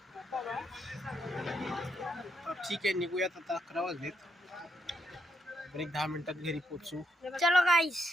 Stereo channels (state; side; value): normal; both; correlation 0.78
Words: तर ठीक आहे, निघूयात आता. 11 वाजलेत. तर एक 10 मिनिटात घरी पोहोचू. चलो गाइस,